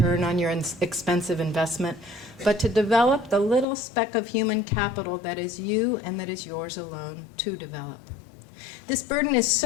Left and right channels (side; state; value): right; drops out; at 3.7 s